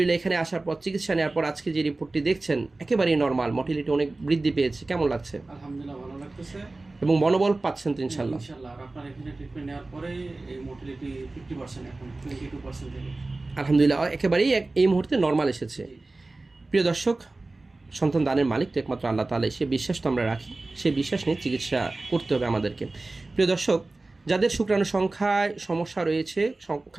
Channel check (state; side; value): quieter; left; 3.2 dB